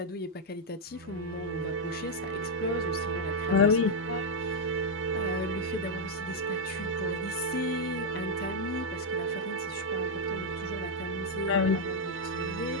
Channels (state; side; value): normal; both; correlation -0.01